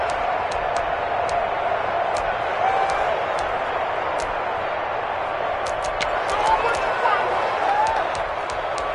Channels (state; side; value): identical; both; correlation 1.00